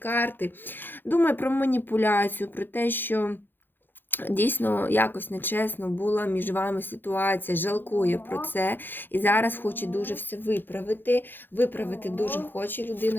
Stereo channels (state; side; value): late; right; 0.096 ms